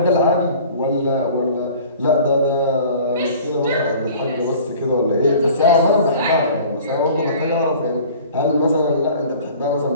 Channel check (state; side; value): inverted; both; correlation -0.46